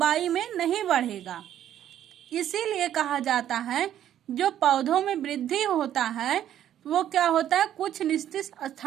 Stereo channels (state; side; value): quieter; left; 11.1 dB